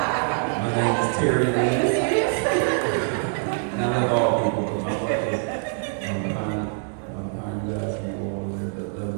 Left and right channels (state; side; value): silent; left; 62 dB below the other